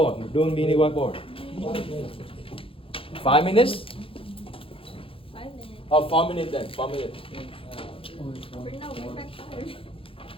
Doing mini whiteboard. 5 minutes? 5 minutes. Oh, 4 minutes then. 4 minutes. We're no, we're back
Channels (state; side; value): late; right; 0.27 ms